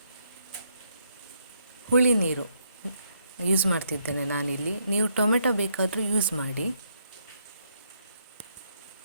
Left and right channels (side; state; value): both; inverted; correlation -0.74